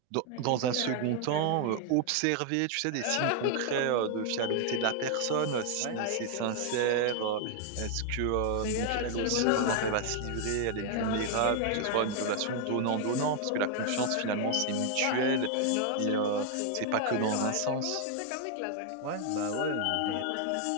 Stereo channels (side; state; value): both; different; correlation 0.00